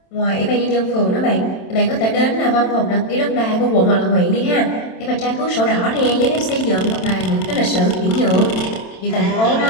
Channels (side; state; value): right; late; 27 ms